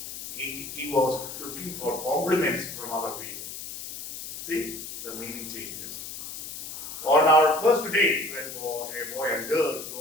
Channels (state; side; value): noise; left; hiss, 9 dB below the sound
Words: he was looking for compliments from other people. See, the meaning changes. On our first date, when a boy and girl